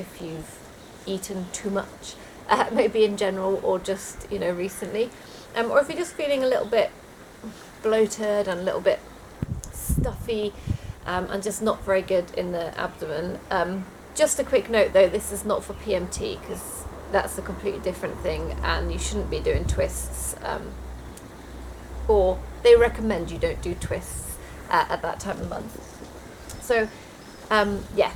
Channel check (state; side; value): identical; both; correlation 1.00